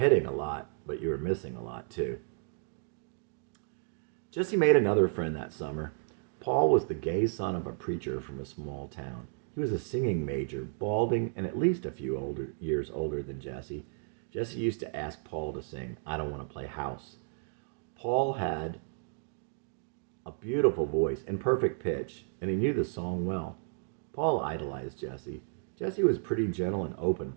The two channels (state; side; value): silent; left; digital silence